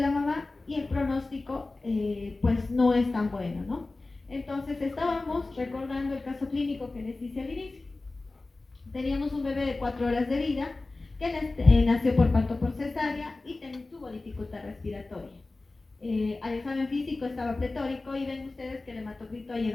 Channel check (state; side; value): quieter; right; 3.3 dB